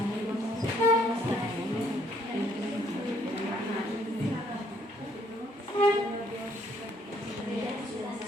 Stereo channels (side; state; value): both; normal; correlation 0.66